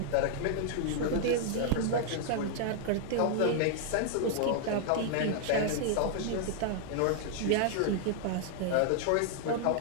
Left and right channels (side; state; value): both; different; correlation -0.01